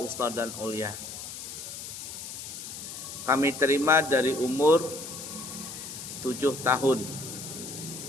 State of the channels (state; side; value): noise; left; hiss, 9 dB below the sound